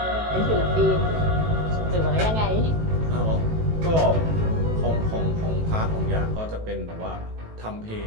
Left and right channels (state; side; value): late; left; 18 ms